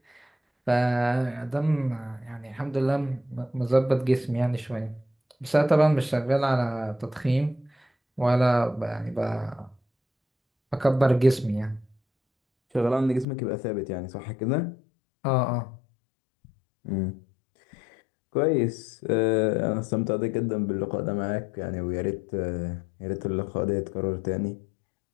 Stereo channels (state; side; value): drops out; right; at 13.2 s